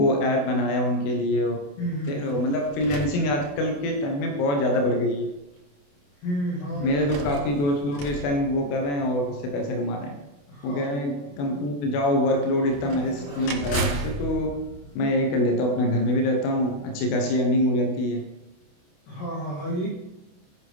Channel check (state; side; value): late; right; 28 ms